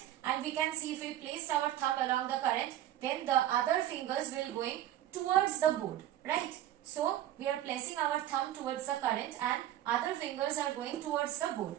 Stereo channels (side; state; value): left; quieter; 12.7 dB